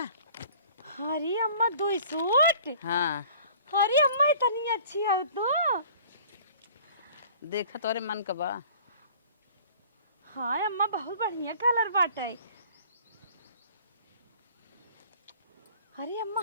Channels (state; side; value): inverted; both; correlation -0.49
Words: अम्मा 2 सूट। हाँ, अरे अम्मा इतनी अच्छी हो तू। देखा तोरे मन का बा। हाँ अम्मा बहुत बढ़िया कलर बाटे। अरे अम्मा